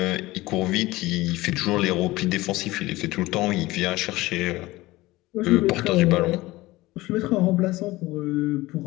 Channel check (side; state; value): right; quieter; 19.2 dB